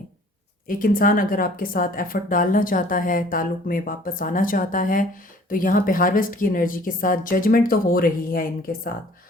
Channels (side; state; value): both; normal; correlation 0.53